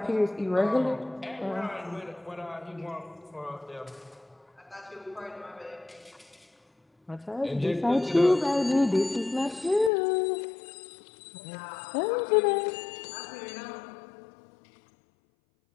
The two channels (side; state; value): right; drops out; at 9.9 s